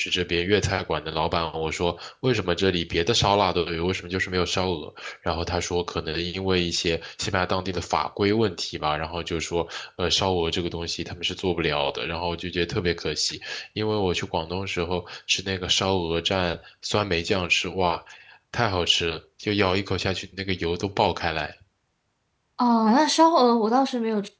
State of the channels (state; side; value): identical; both; correlation 1.00